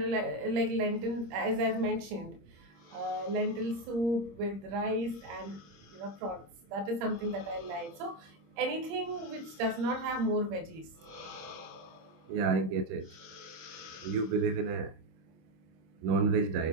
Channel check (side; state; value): left; late; 26 ms